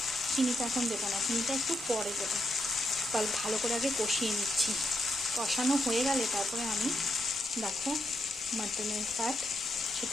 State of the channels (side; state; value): both; normal; correlation 0.80